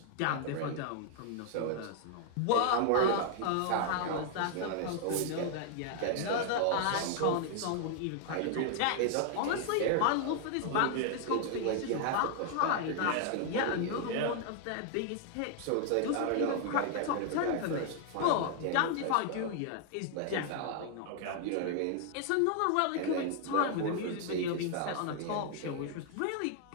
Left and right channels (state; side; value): different; both; correlation 0.00